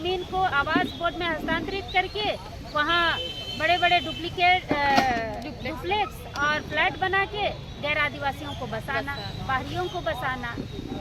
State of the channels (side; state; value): both; identical; correlation 1.00